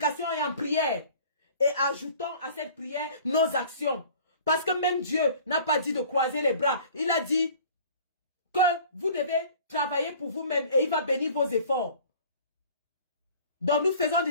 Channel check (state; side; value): inverted; both; correlation -0.47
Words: et en prière et ajoutons à cette prière nos actions. Parce que même Dieu n'a pas dit de croiser les bras. Il a dit que vous devez travailler pour vous-même et il va bénir vos efforts. Donc nous faisons